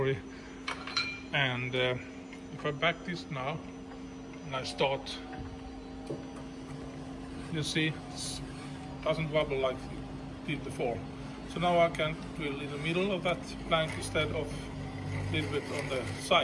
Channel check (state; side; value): identical; both; correlation 1.00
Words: And if I back this now and I start, you see it doesn't wobble like it did before. So now I can drill in the middle of that plank instead of a little bit on the